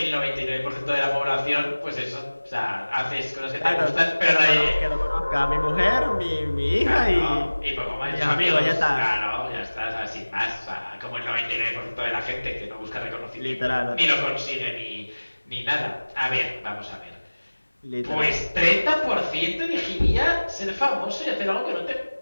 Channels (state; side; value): inverted; both; correlation -1.00